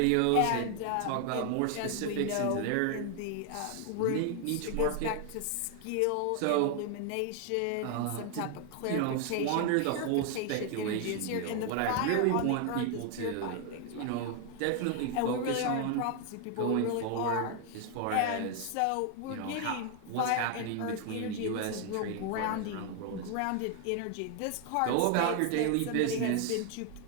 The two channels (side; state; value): both; different; correlation 0.00